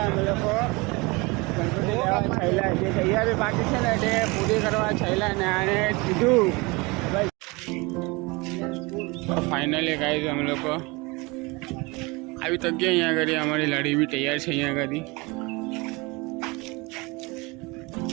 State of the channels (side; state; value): left; quieter; 25.6 dB